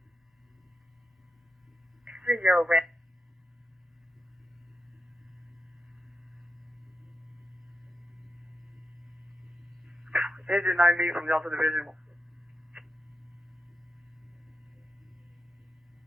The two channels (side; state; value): both; normal; correlation 0.88